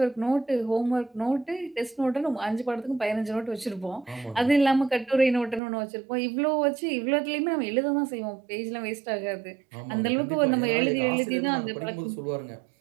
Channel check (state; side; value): drops out; left; at 5.6 s